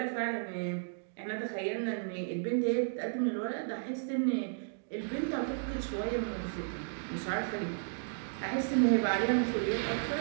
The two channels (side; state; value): left; silent; digital silence